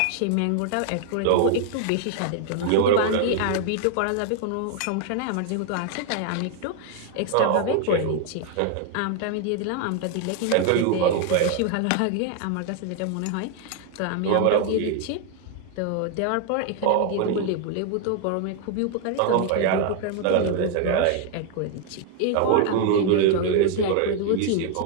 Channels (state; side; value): different; both; correlation 0.00